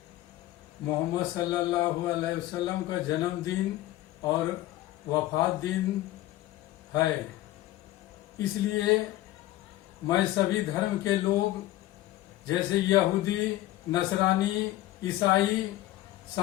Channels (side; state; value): right; quieter; 15.7 dB